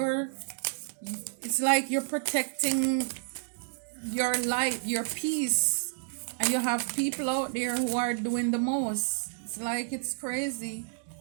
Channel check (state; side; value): silent; left; digital silence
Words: it's like you're protecting your light, your peace, and you have people out there who are doing the most. It's like it's crazy.